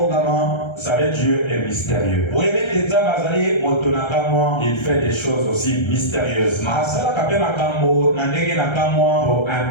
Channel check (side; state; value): right; late; 1.3 ms